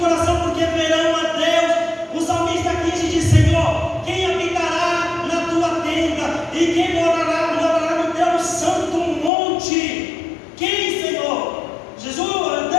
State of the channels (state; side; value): drops out; right; at 9.3 s